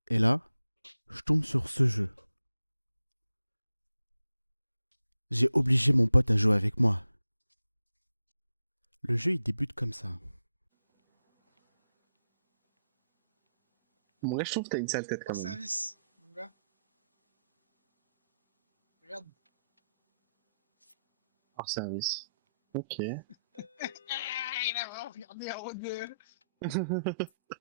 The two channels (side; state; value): both; inverted; correlation -0.85